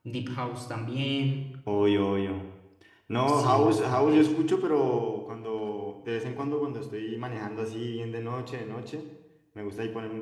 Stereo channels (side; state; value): both; identical; correlation 1.00